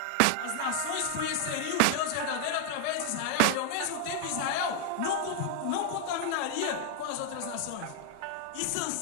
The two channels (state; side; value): different; both; correlation 0.00